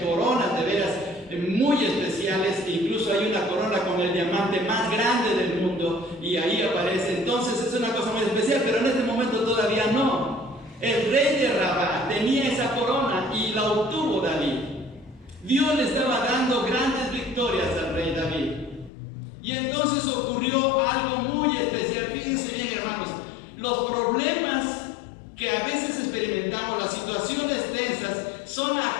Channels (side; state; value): right; drops out; at 18.9 s